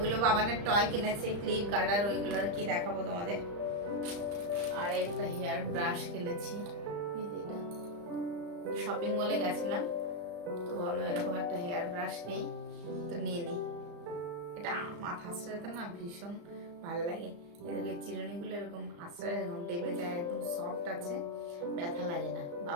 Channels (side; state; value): left; late; 35 ms